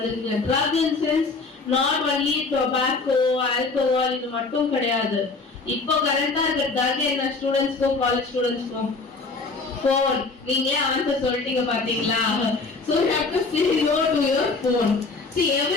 Drug in sense not only tobacco, alcohol இது மட்டும் கிடையாது. இப்போ கரண்டா இருக்க ட்ரக் என்ன ஸ்டூடெண்ட்ஸ்க்கும் காலேஜ் ஸ்டூடெண்ட்ஸ்க்கும் phone. நீங்களே ஆன்சர் சொல்லிட்டீங்க பாத்தீங்களா? So you have to say no to your phone. See,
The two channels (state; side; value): quieter; right; 3.9 dB